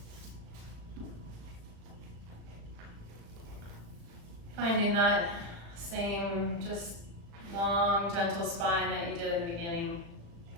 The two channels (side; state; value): left; late; 35 ms